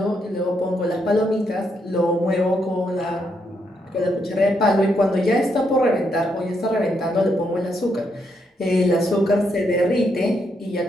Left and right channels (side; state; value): both; normal; correlation 0.78